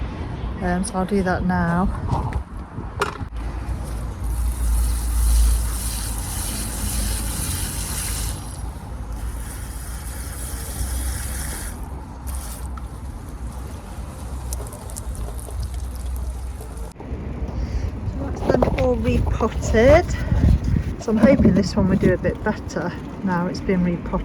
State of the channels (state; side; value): identical; both; correlation 1.00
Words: so I'll do that now. Repotted, so I'm hoping this one will do a bit better now it's been